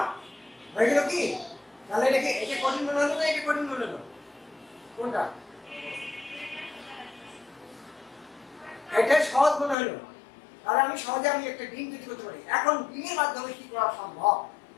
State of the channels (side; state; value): right; drops out; at 9.8 s